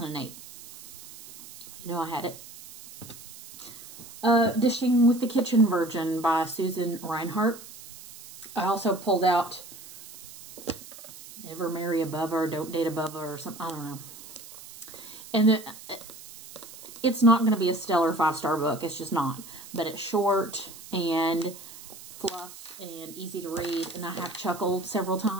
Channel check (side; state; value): right; noise; hiss, 16 dB below the sound